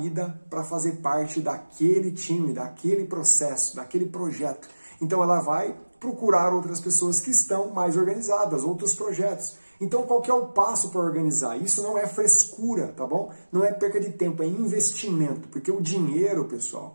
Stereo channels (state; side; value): inverted; both; correlation -1.00